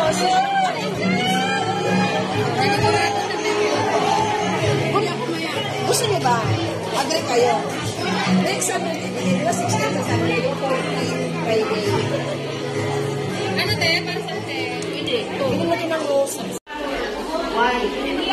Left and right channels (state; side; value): identical; both; correlation 1.00